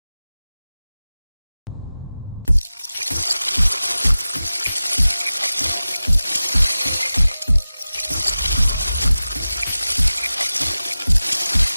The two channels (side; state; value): both; inverted; correlation -0.96